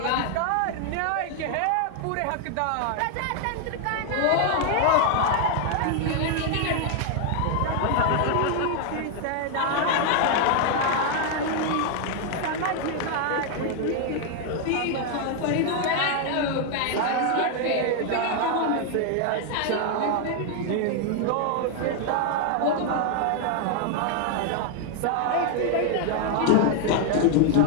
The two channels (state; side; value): different; both; correlation 0.00